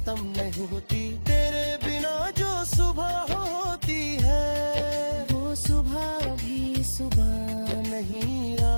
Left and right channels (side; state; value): both; inverted; correlation -1.00